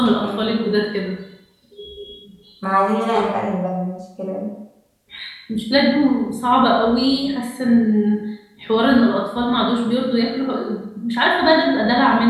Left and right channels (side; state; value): both; identical; correlation 1.00